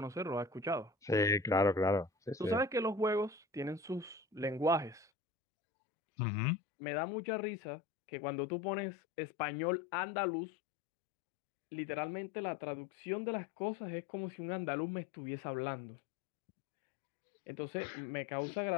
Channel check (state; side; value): drops out; right; at 5.1 s